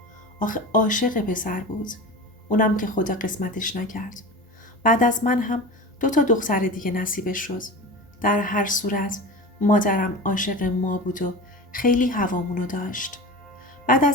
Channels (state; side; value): normal; both; correlation 0.31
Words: آخه عاشق پسر بود. اونم که خدا قسمتش نکرد. بعد از من هم 2 دختر دیگه نصیبش شد. در هر صورت مادرم عاشق ما بود و خیلی هوامونو داشت. بعد